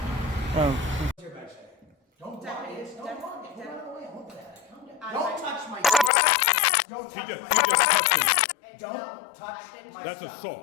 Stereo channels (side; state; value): right; drops out; at 6.1 s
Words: Oh. Don't touch my Don't She touch just my touched him. Don't touch my That's stuff.